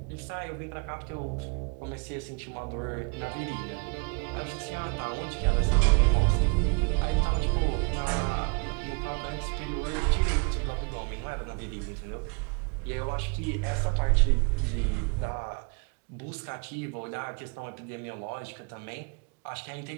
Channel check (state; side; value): quieter; left; 35.1 dB